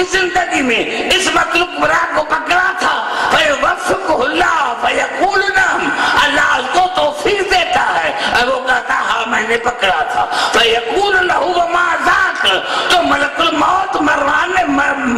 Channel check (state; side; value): identical; both; correlation 1.00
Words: زندگی میں عصمت الکبریٰ کو پکڑا تھا، فیوفقہ اللہ فیقول نعم، اللہ اس کو توفیق دیتا ہے، اور وہ کہتا ہاں میں نے پکڑا تھا، فیقول لہو وما ذاک، تو ملک الموت